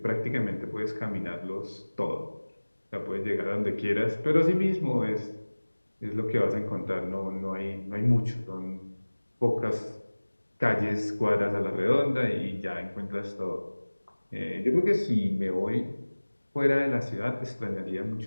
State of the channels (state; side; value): inverted; both; correlation -1.00